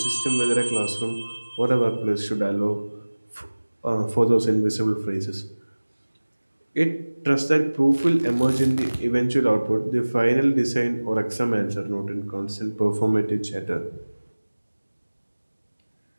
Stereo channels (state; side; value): inverted; both; correlation -1.00